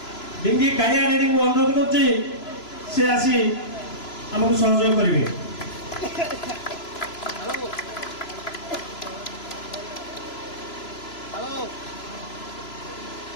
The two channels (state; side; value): late; right; 3.0 ms